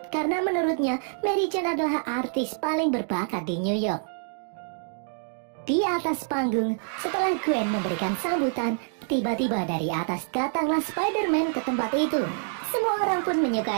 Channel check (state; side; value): silent; left; 60 dB below the other